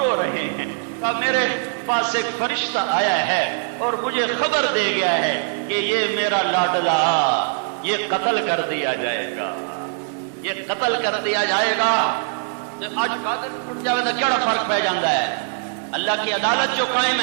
رہے ہیں؟ کہا میرے پاس ایک فرشتہ آیا ہے اور مجھے خبر دے گیا ہے کہ یہ میرا لاڈلا یہ قتل کر دیا جائے گا، یہ قتل کر دیا جائے گا۔ آج قاتل ٹوٹ جائے گا کیا فرق پہ جاتا ہے؟ اللہ کی عدالت جو قائم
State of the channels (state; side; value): silent; left; digital silence